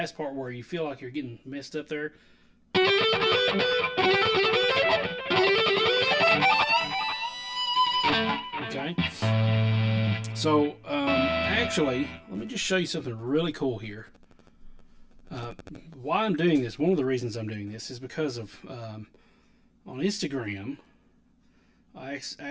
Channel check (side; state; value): both; identical; correlation 1.00